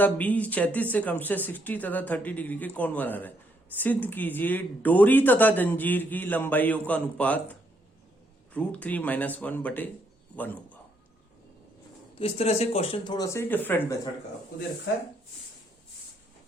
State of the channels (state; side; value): normal; both; correlation 0.73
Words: बी क्षैतिज से क्रमशः 60 तथा 30 डिग्री के कोण बना रहे हैं। सिद्ध कीजिए डोरी तथा जंजीर की लंबाइयों का अनुपात √3 - 1/1 होगा। तो इस तरह से क्वेश्चन थोड़ा सा डिफरेंट मेथड का आपको दे रखा है।